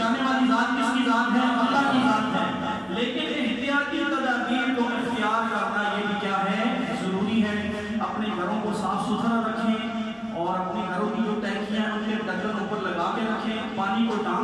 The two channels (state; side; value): identical; both; correlation 1.00